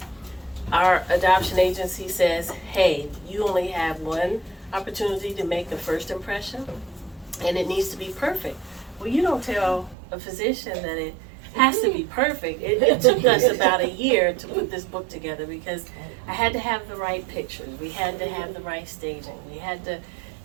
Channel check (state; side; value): drops out; left; at 10.0 s